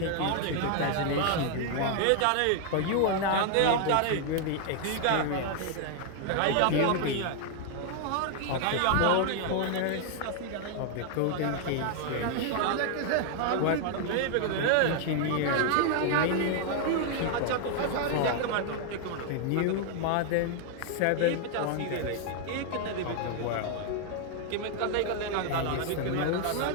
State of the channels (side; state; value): both; different; correlation 0.00